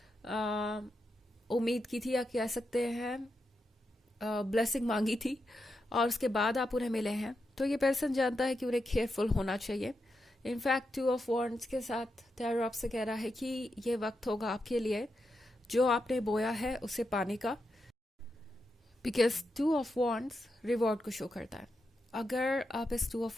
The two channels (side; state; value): both; normal; correlation 0.86